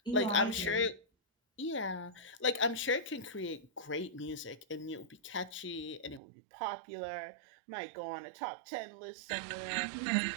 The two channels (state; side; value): drops out; left; at 6.2 s